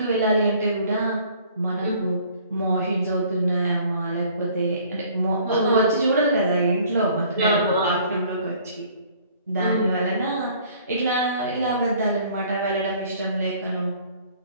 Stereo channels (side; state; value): both; inverted; correlation -0.55